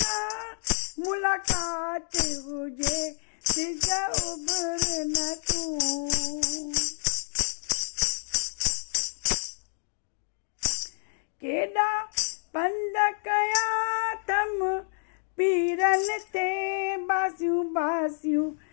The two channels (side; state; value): right; silent; digital silence